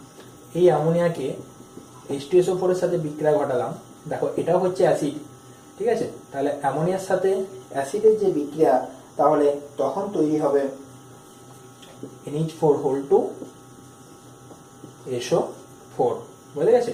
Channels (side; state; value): both; identical; correlation 1.00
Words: এই অ্যামোনিয়াকে H2SO4 এর সাথে বিক্রিয়া ঘটালাম, দেখো এটাও হচ্ছে অ্যাসিড, ঠিক আছে, তাহলে অ্যামোনিয়ার সাথে অ্যাসিডের যে বিক্রিয়া, তাহলে তখন তৈরি হবে NH4 SO4। বুঝে গেছে?